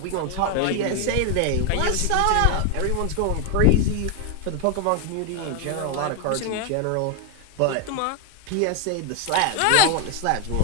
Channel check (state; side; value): different; both; correlation 0.01